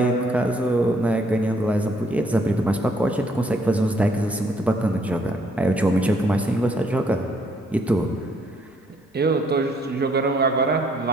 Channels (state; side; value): normal; both; correlation 0.67